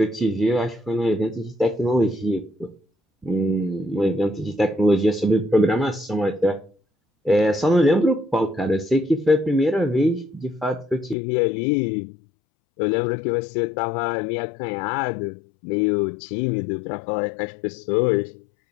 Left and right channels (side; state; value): right; drops out; at 11.2 s